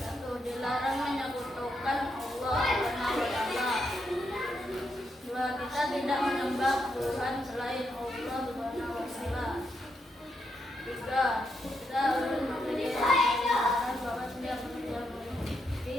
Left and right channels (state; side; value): normal; both; correlation 0.81